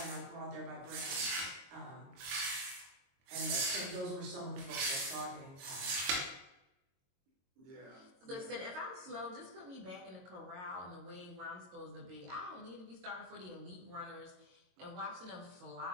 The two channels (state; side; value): late; left; 22 ms